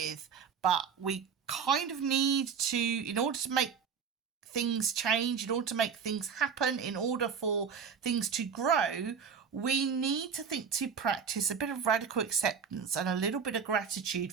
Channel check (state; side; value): quieter; left; 6.6 dB